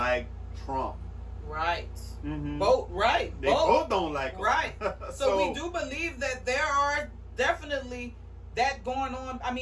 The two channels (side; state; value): both; identical; correlation 1.00